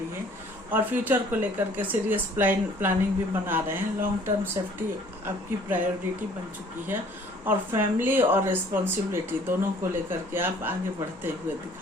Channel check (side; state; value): both; normal; correlation 0.55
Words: है, और फ्यूचर को लेकर के सीरियस प्लानिंग भी बना रहे हैं। लॉन्ग टर्म सेफ्टी आपकी प्रायोरिटी बन चुकी है, और फैमिली और रिस्पॉन्सिबिलिटी दोनों को लेकर के आप आगे बढ़ते हुए